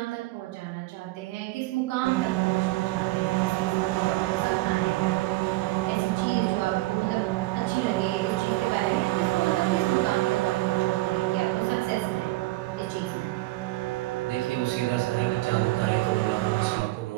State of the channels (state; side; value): quieter; left; 19.3 dB